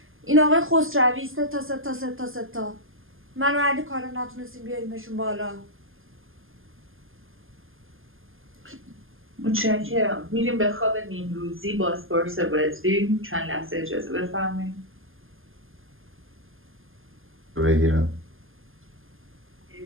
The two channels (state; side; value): late; left; 0.59 ms